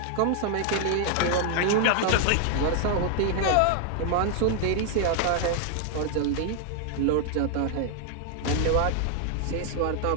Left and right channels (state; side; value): different; both; correlation 0.00